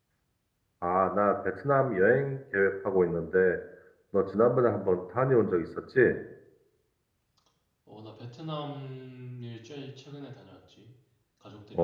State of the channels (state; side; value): identical; both; correlation 1.00